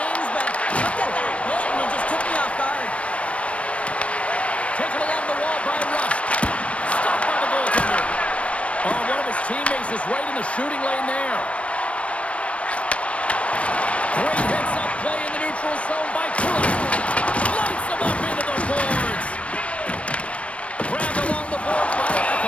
but look at that hit, and it just took me off guard. Taken along the wall by Rust. Stopped by the goaltender. Oh, one of his teammates is right in the shooting lane there. Great heads-up play in the neutral zone by Kulak. Lights him up into the boards. Grabbed along the boards by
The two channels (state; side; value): late; right; 0.062 ms